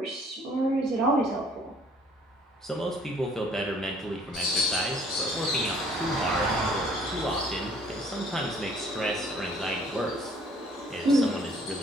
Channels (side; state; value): both; normal; correlation 0.58